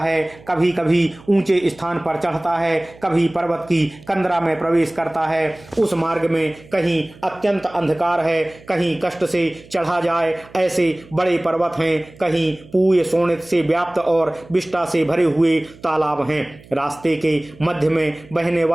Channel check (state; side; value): noise; right; hum, 23 dB below the sound